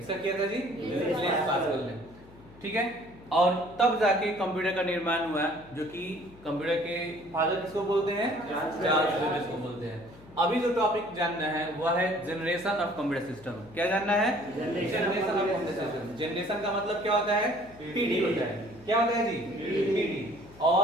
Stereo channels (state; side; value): noise; left; hum, 23 dB below the sound